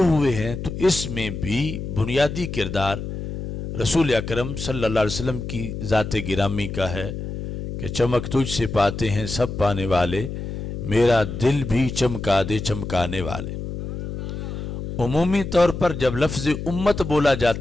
ہوئے ہیں، تو اس میں بھی بنیادی کردار رسول اکرم صلی اللہ علیہ وسلم کی ذات گرامی کا ہے کہ چمک تجھ سے پاتے ہیں سب پانے والے، میرا دل بھی چمکا دے چمکانے والے۔ عمومی طور پر جب لفظ امت بولا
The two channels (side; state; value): left; noise; hum, 7 dB below the sound